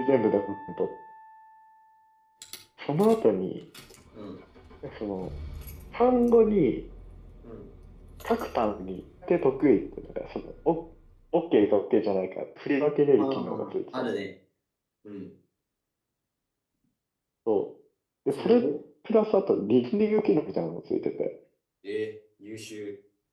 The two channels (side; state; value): both; identical; correlation 1.00